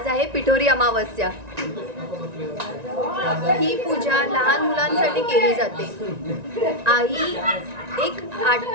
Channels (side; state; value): left; late; 1.9 ms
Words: आहे पिठोरी अमावस्या. ही पूजा लहान मुलांसाठी केली जाते. आई एक